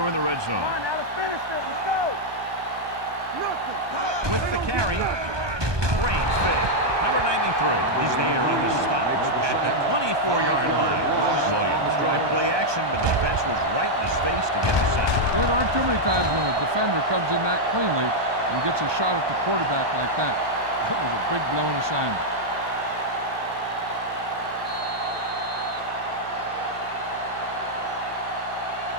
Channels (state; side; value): late; left; 1.2 ms